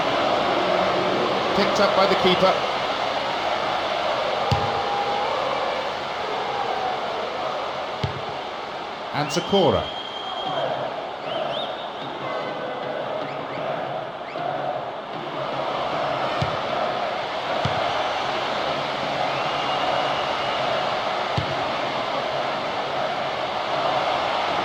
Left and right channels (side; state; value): both; identical; correlation 1.00